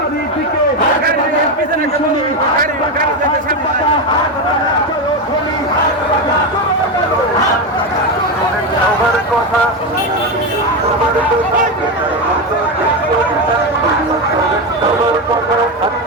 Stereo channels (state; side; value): normal; both; correlation 0.13